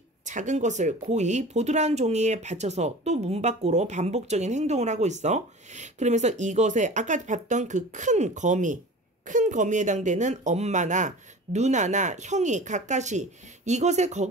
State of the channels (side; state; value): both; normal; correlation 0.38